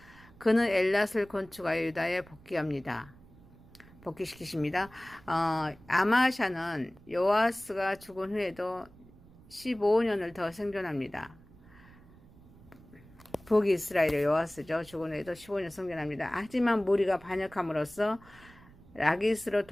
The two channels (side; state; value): right; noise; rumble, 23 dB below the sound